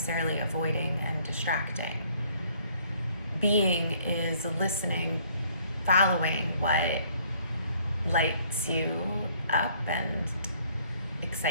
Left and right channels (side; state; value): both; inverted; correlation -0.61